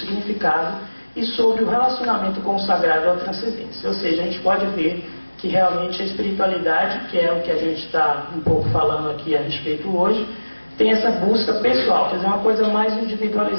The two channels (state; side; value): inverted; both; correlation -1.00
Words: e sobre o relacionamento com o sagrado ou a transcendência. Ou seja, a gente pode ver que realmente a espiritualidade, que é o que a gente está um pouco falando aqui a respeito hoje, tem essa busca pessoal, quer dizer, uma coisa mais